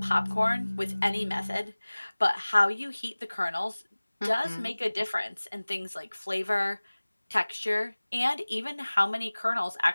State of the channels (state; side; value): inverted; both; correlation -1.00